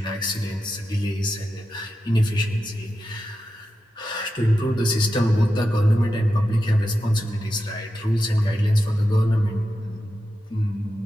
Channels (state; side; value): normal; both; correlation 0.90